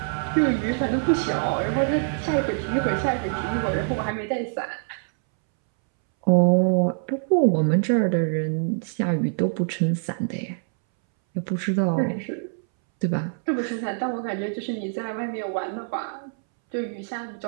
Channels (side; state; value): left; silent; 62 dB below the other